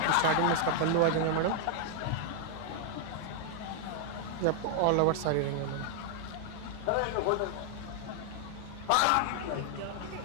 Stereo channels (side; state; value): both; different; correlation 0.00